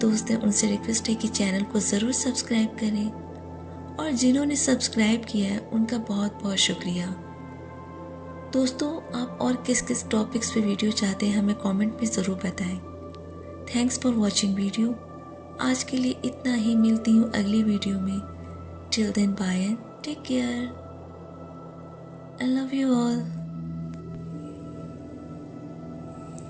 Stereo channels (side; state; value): both; identical; correlation 1.00